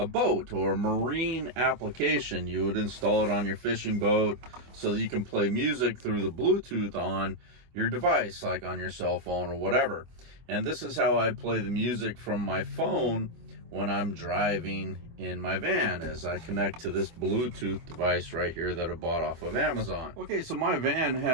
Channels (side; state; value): left; late; 24 ms